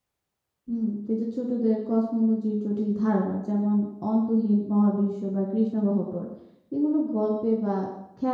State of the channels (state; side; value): identical; both; correlation 1.00